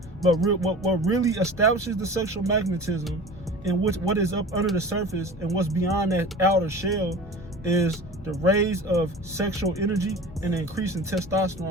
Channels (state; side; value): normal; both; correlation 0.38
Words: but what really establishes the sexual magnetism and what is up under the surface and what's beyond that outer shell is the raise of sexual energy and the increase in